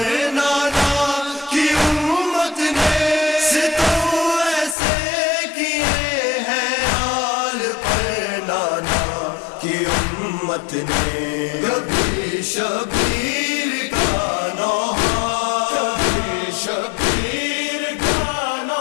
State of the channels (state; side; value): drops out; right; at 4.8 s